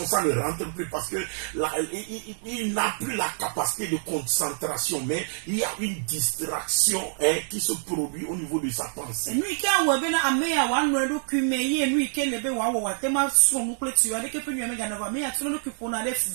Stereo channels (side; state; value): left; silent; 61 dB below the other